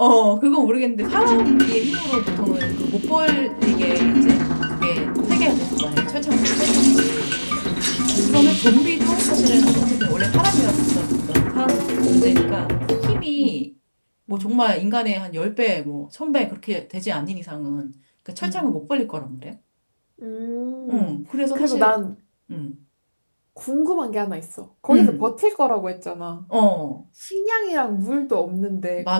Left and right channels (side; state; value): both; inverted; correlation -1.00